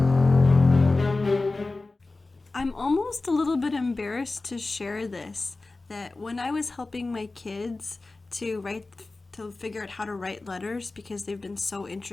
I'm almost a little bit embarrassed to share this, that when I was helping my kids to figure out how to write letters because they've been so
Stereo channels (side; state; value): right; quieter; 3.3 dB